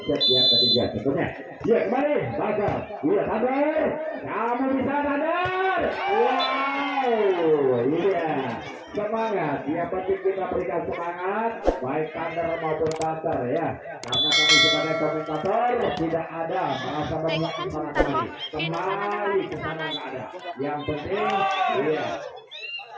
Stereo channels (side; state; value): both; identical; correlation 1.00